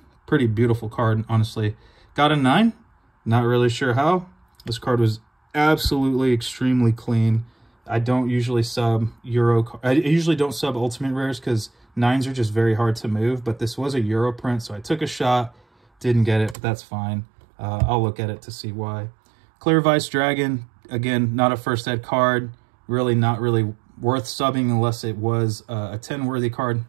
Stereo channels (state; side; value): drops out; left; at 16.6 s